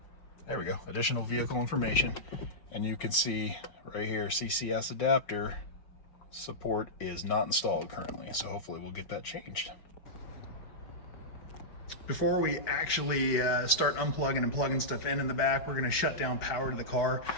There we go, additional vehicle information. And you can see right here, CCS Adapter support is not installed currently. So hopefully we'll get that changed. Before we actually start unplugging and plugging stuff in the back, we're gonna shut down power to the car.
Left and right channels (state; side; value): late; right; 5.4 ms